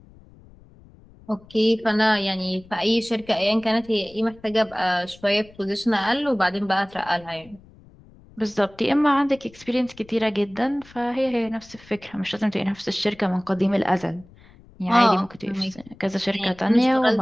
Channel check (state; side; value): noise; left; rumble, 24 dB below the sound